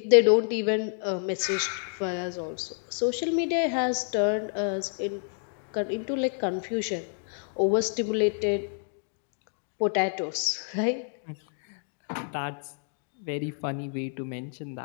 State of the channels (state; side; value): silent; right; 59 dB below the other